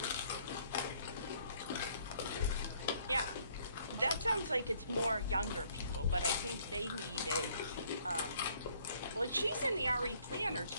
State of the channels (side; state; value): both; inverted; correlation -0.63